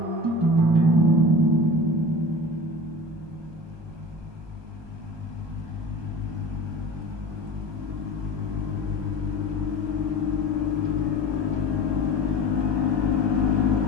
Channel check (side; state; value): left; late; 1.2 ms